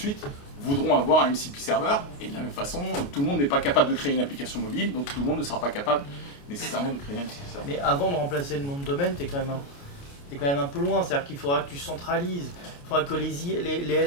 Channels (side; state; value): right; late; 29 ms